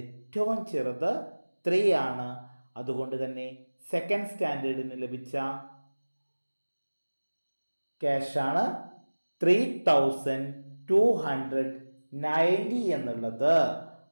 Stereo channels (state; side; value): inverted; both; correlation -1.00